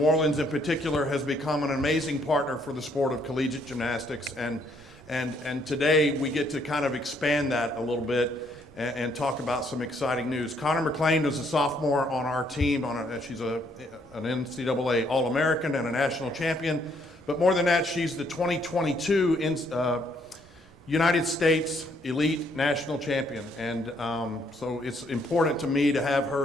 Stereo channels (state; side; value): normal; both; correlation 0.69